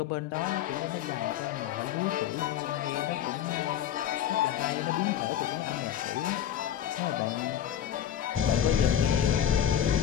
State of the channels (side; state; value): right; quieter; 10.2 dB